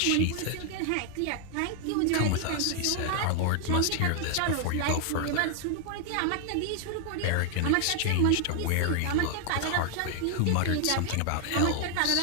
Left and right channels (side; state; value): both; different; correlation 0.00